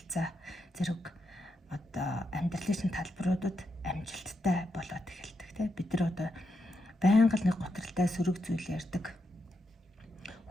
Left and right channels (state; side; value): normal; both; correlation 0.83